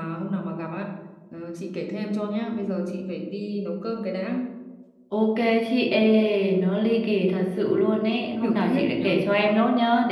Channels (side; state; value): both; identical; correlation 1.00